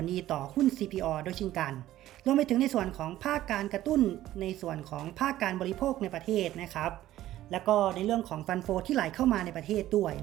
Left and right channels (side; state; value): left; quieter; 14.1 dB